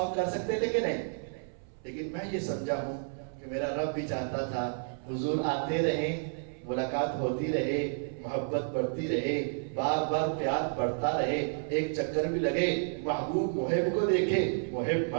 کر سکتے تھے کہ نہیں, لیکن میں یہ سمجھا ہوں کہ میرا رب بھی چاہتا تھا حضور آتے رہیں, ملاقات ہوتی رہے, محبت بڑھتی رہے, بار بار پیار بڑھتا رہے, ایک چکر بھی لگے, محبوب محب کو دیکھے, محب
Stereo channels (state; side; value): silent; left; 57 dB below the other